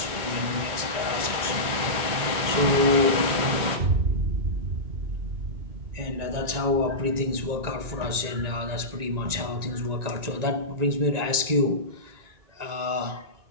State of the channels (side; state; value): left; late; 1.9 ms